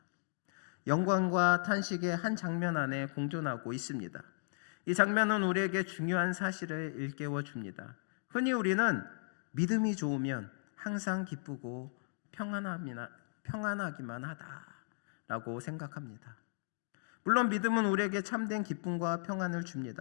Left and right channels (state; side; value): silent; right; digital silence